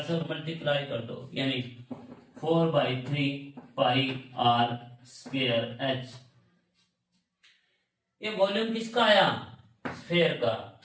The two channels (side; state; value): both; identical; correlation 1.00